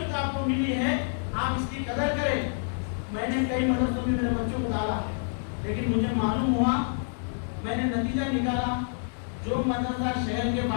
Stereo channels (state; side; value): silent; right; digital silence